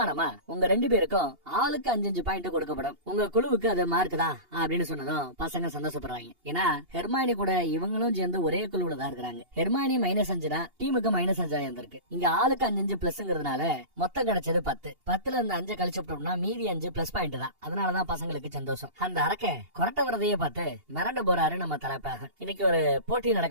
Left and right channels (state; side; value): late; left; 2.8 ms